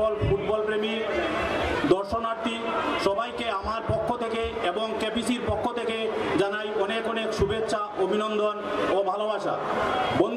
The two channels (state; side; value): identical; both; correlation 1.00